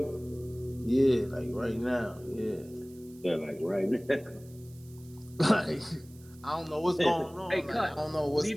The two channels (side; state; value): right; noise; hiss, 25 dB below the sound